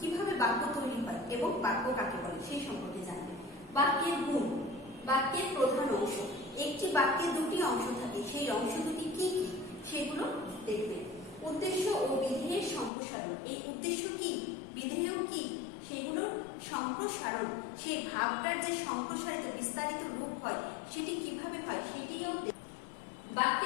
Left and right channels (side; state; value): right; drops out; at 12.9 s